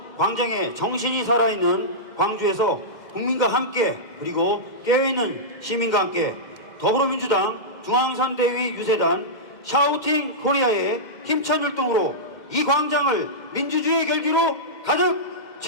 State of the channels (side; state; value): right; late; 2.1 ms